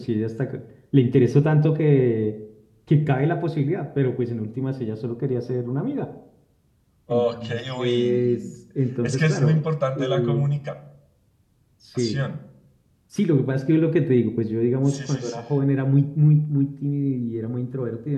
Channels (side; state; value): both; identical; correlation 1.00